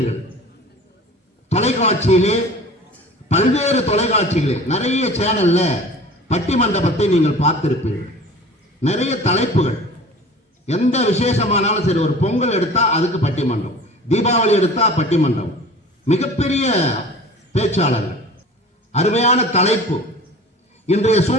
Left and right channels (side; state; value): both; normal; correlation 0.42